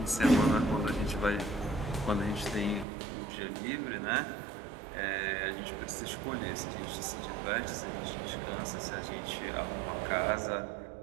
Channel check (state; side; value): drops out; left; at 2.9 s